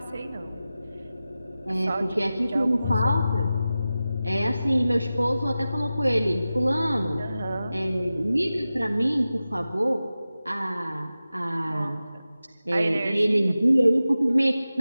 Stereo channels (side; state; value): both; inverted; correlation -0.94